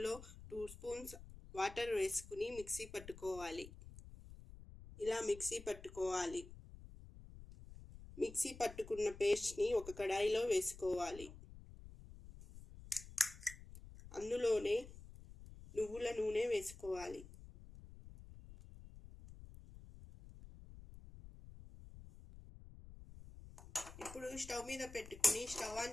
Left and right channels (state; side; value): noise; left; rumble, 16 dB below the sound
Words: 2 స్పూన్స్ వాటర్ వేసుకుని మిక్సీ పట్టుకోవాలి. ఇలా మిక్సీ పట్టుకోవాలి. మిక్సీ పట్టుకున్న పేస్ట్ని ఒక కడాయిలో వేసుకోవాలి. అందులోనే నువ్వుల నూనె వేసుకోవాలి. ఇప్పుడు స్టవ్ మీద పెట్టుకుని స్టవ్